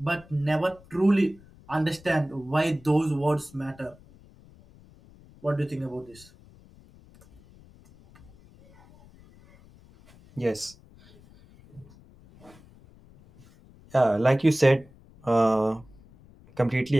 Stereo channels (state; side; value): noise; left; rumble, 25 dB below the sound